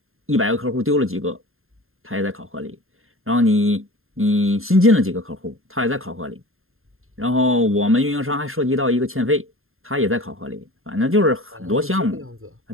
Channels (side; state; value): left; late; 0.61 ms